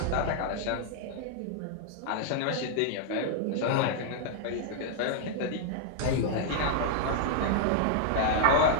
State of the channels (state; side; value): different; both; correlation -0.01